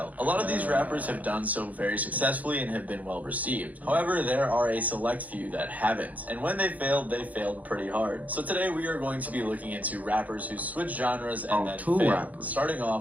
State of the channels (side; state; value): left; late; 0.076 ms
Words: A lot of these rappers have done so very successfully and have been well received. However, there are a select few that haven't, and when they failed pretty hard. So today we are going to be looking into rappers who switch genres and then failed, starting